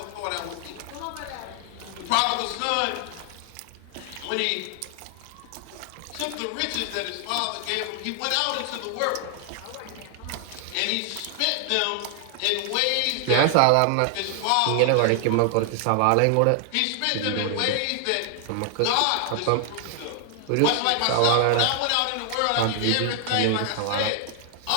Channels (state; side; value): different; both; correlation 0.00